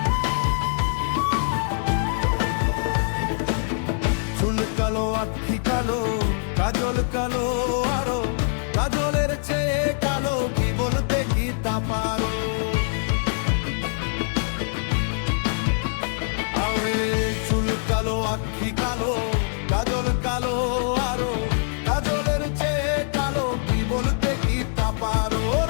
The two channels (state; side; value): silent; right; digital silence